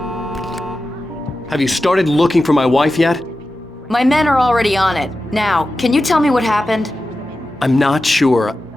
Have you started looking for my wife yet? My men are already on it. Now, can you tell me what happened? I'm not sure.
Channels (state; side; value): normal; both; correlation 0.93